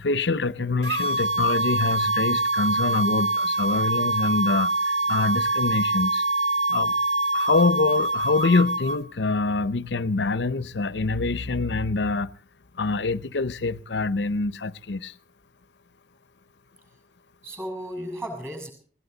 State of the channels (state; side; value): normal; both; correlation -0.13